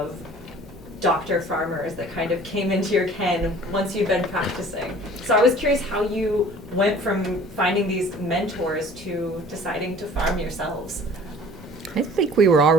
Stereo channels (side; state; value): both; normal; correlation 0.49